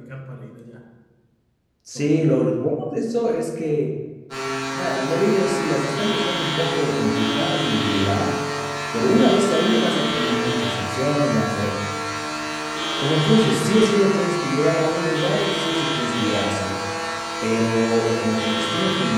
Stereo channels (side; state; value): both; identical; correlation 1.00